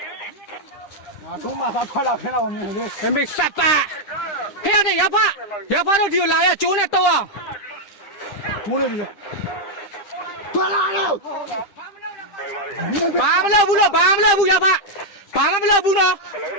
啊，中马他快了，看到我们的。还没杀吧？嘿呀，这哑巴都丢了呀，酒呢多啊！中了这个。断了。ဘာမလုပ်ဘူးလို့ဘာမလုပ်ဘူးရဖဘာမှမလုပ်ဘူးနော်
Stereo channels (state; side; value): late; right; 9.9 ms